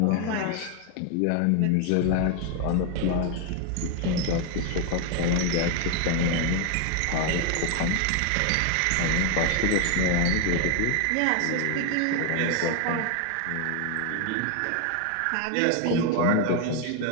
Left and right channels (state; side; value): different; both; correlation 0.01